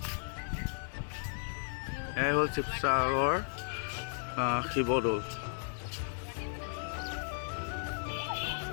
এই হ'ল শিৱসাগৰ শিৱদৌল।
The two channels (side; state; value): right; silent; digital silence